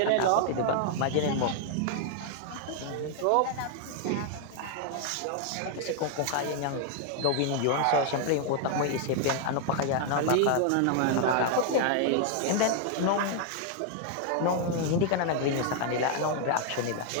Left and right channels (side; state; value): both; different; correlation 0.00